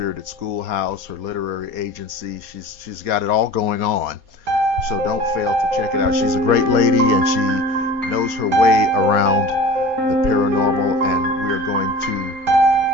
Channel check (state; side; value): late; left; 4.2 ms